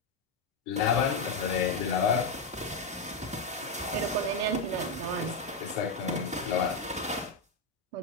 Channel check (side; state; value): right; quieter; 3.2 dB